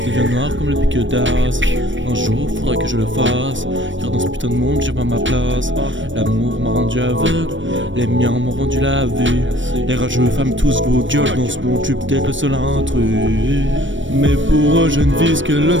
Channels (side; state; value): left; late; 0.56 ms